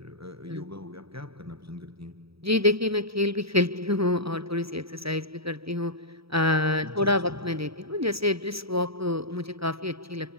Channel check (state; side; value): late; left; 0.77 ms